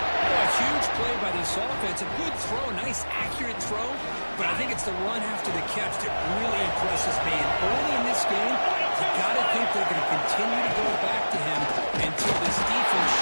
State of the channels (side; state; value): both; inverted; correlation -1.00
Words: A huge play by this offense. A good throw, nice accurate throw. But I think it's the run after the catch that really impresses me. And early in this game, you got to think they're going to continue to go back to him until this defense